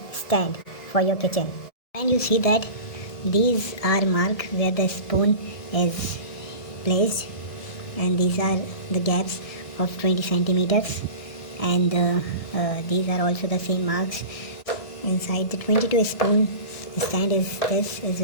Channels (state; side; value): late; right; 1.6 ms